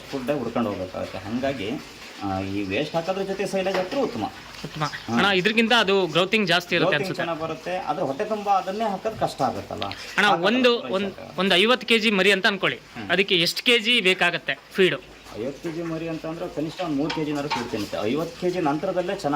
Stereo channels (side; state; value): both; identical; correlation 1.00